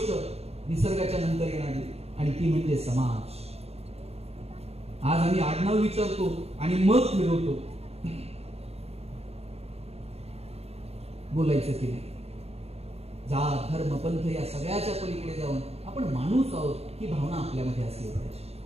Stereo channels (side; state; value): left; late; 0.30 ms